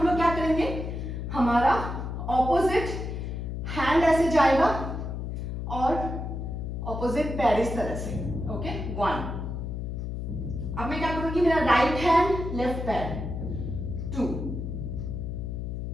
लोग क्या करेंगे, हमारा ऑपोजिट हैंड ऐसे जाएगा और ऑपोजिट पैर इस तरह से। ओके, 1। अब मैं क्या करूंगी, मेरा राइट हैंड लेफ्ट पैर। 2,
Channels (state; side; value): noise; left; hum, 4 dB below the sound